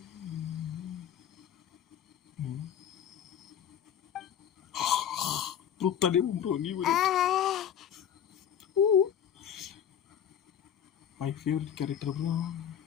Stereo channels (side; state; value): right; quieter; 9.1 dB